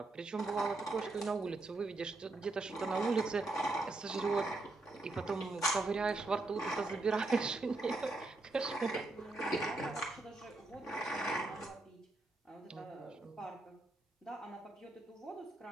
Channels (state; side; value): quieter; left; 3.1 dB